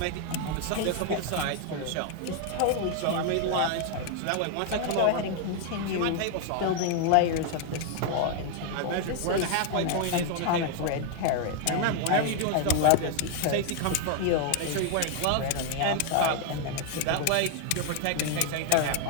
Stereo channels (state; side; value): different; both; correlation 0.00